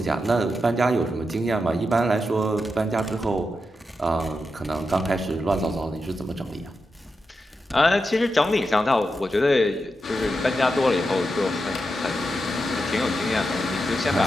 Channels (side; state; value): both; normal; correlation 0.88